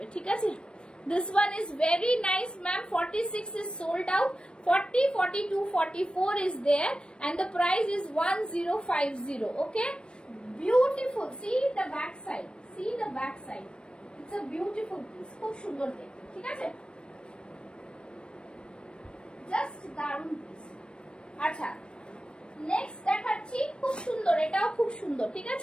ঠিক আছে। This one is very nice, ma'am. 46 is sold out. 40, 42, 44 is there, and the price is 1050. Okay, beautiful. See the back side. See the back side. It's a beautiful piece. খুব সুন্দর দেখতে, ঠিক আছে। Just দারুণ piece। আচ্ছা next দেখাচ্ছি, খুব সুন্দর, এটাও খুব সুন্দর, ঠিক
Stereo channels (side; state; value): right; late; 0.055 ms